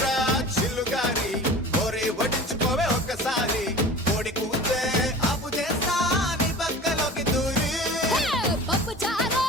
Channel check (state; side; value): normal; both; correlation 0.38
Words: చిల్లుగారి కోరి వడ్డించుకోవే ఒక్కసారి కోడి కూతే అప్పు చేస్తా నీ పక్కలోకి దూరి పప్పు చారు